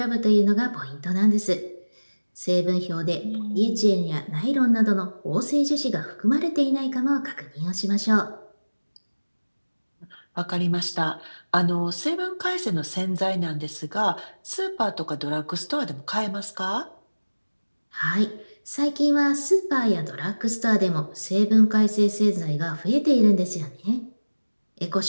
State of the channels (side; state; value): both; inverted; correlation -1.00